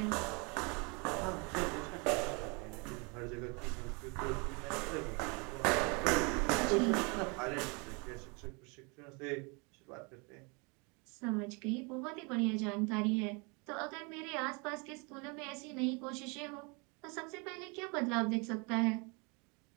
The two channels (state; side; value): quieter; left; 31.2 dB